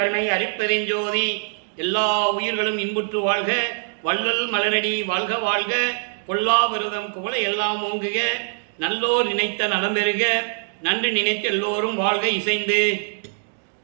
அருட்பெருஞ்சோதி. எல்லா உயிர்களும் இன்புற்று வாழ்க, வள்ளல் மலரடி வாழ்க வாழ்க, கொல்லா விரதம் குவள எல்லாம் ஓங்குக, நல்லோர் நினைத்த நலம் பெறுக, நன்று நினைத்து எல்லோரும் வாழ்க இசைந்து.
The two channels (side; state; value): left; silent; 63 dB below the other